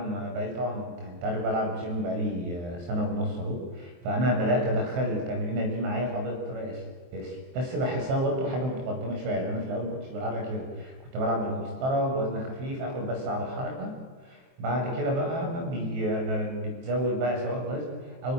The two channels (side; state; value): left; late; 23 ms